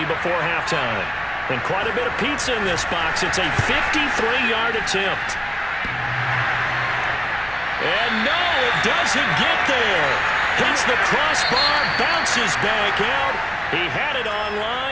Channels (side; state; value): right; noise; hum, 22 dB below the sound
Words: before halftime. And quite a bit of pizza in this box. It's a 53-yard attempt. And no, it doesn't get there. Hits the crossbar, bounces back out. He had it